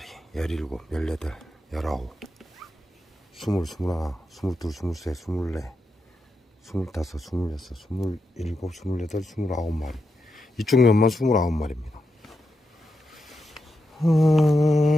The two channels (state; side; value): normal; both; correlation 0.86